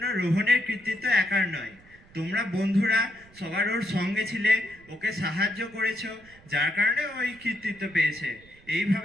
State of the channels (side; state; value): right; noise; rumble, 26 dB below the sound